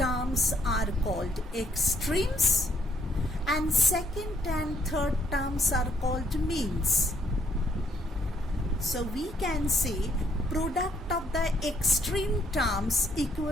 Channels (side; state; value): both; normal; correlation 0.69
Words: are called extremes and second and third terms are called means. So we can say product of the extreme terms